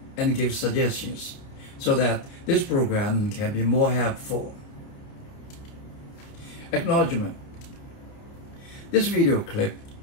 and give suggestions so that this program can be more helpful. Acknowledgement. This video clip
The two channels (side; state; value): right; late; 29 ms